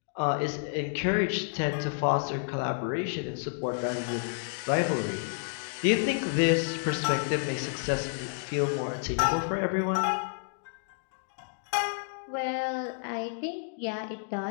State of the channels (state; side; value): silent; right; digital silence